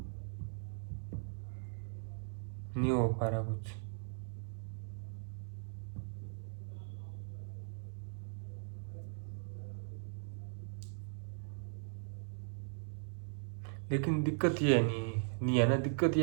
नहीं हो पा रहा कुछ। लेकिन दिक्कत ये है नहीं, नहीं है ना, दिक्कत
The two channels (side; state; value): left; silent; 52 dB below the other